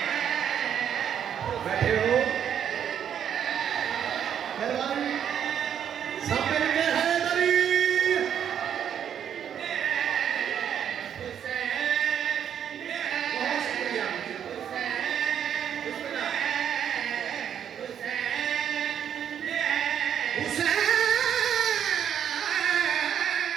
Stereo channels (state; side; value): quieter; left; 8.9 dB